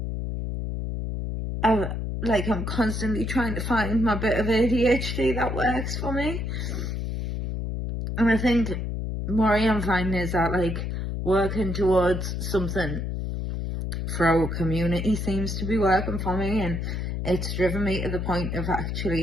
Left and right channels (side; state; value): left; noise; hum, 3 dB below the sound